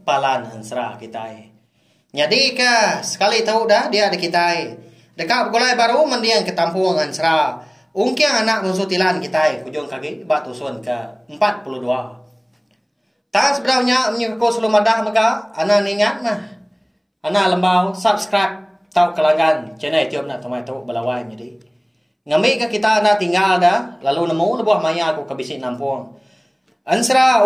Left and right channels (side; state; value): both; identical; correlation 1.00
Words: Palan Ansra kita. Jadi ke sekali tahu dah dia ada kita. Dekat bugulai baru mendiang ke Tampung Ansra. Ungkiang anak munsutilan kita hujung kaki batusun ke 42. Tak sebenarnya menyukai sebelum ada maka anak ingat mah. Anak lembau subscribe tahu kelangan channel YouTube anak temuai tahu balawai jadi. Ngambil ke kita nak tinggal dah, lalu nemu lebuah maya aku ke bisik nampung. Ansra